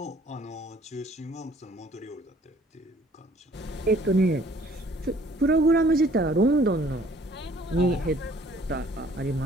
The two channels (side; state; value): both; normal; correlation 0.58